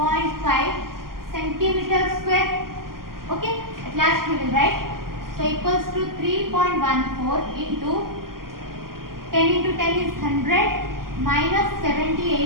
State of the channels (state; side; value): late; left; 0.92 ms